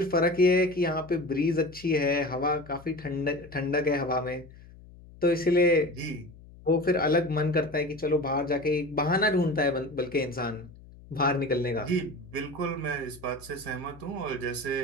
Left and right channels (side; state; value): left; noise; hum, 21 dB below the sound